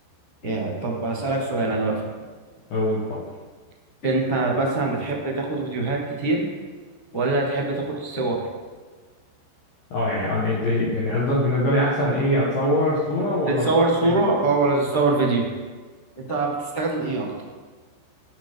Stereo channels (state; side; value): late; right; 14 ms